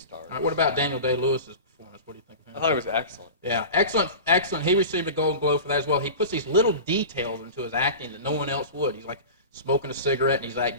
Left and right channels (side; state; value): both; inverted; correlation -0.33